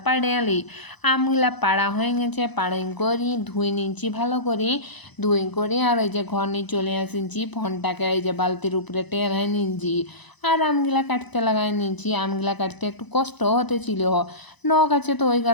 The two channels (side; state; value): right; late; 1.0 ms